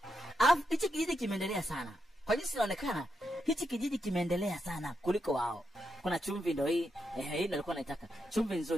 Alafu hichi kijiji kimeendelea sana. Kwa jinsi inaonekana hichi kijiji kimeendelea sana kuliko wao. Kuna chumvi ndio hii. Hii nilikuwa naitaka. Chumvi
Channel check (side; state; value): both; normal; correlation 0.84